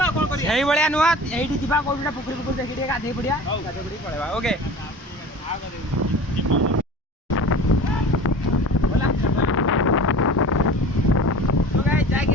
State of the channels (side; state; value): both; normal; correlation 0.39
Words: କ'ଣ କରିବା ସେଇଭଳିଆ ନୁହଁ ଏଇଠି ଯିବା କୋଉଠି ଗୋଟେ ପୋଖରୀ ପୋଖରୀ ଦେଖି ଟିକେ ଗାଧେଇ ପଡ଼ିବା ଗାଧେଇ ପଡ଼ିକି ପଳେଇବା ଓକେ ଯାଇକି